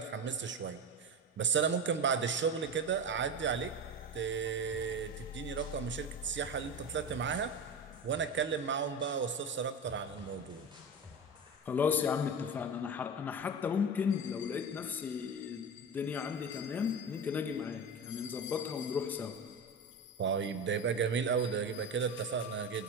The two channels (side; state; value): both; normal; correlation 0.25